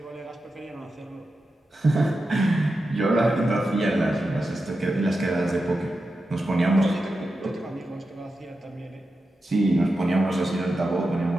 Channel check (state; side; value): normal; both; correlation 0.90